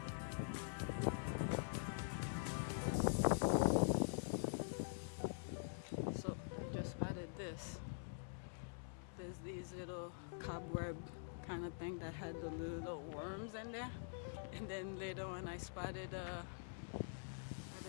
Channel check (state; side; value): silent; right; digital silence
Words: So I just spotted this. There's these little cobweb kind of thing that had the little worms in there, and then later on I spotted what